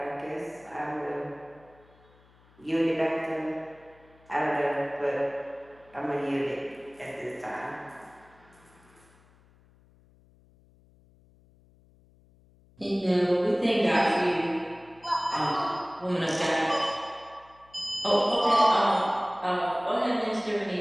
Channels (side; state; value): left; noise; hum, 29 dB below the sound